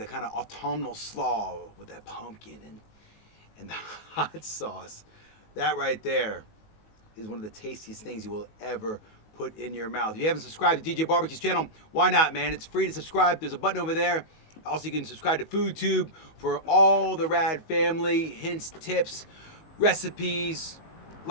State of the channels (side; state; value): right; late; 19 ms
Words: a kind of autumnal slaw with that pumpkin and the hot sauce. That right there is one of the tastiest things you will ever put in your mouth. If you haven't subscribed to DJ BBQ's channel, why not, man? It's free to subscribe. There's a button over there. Also, you can subscribe to FoodTube for all the rad family hints, tips, recipes,